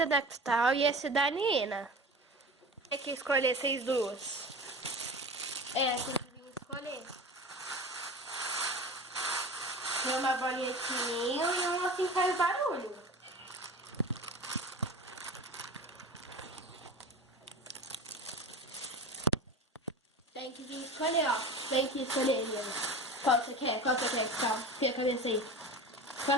é da Cristal e esse é da Nina. Tem que escolher vocês duas. É, tem que vir escolher. Tem uma bolinha de sininho e uma assim faz barulho. Tem que vir escolher, ó. Tem que escolher, Nina. Qual você quer? Qual você quer, Cristal? Tira a cabeça aí.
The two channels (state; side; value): normal; both; correlation 0.33